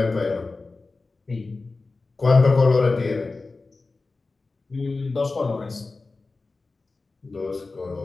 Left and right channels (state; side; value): quieter; right; 3.7 dB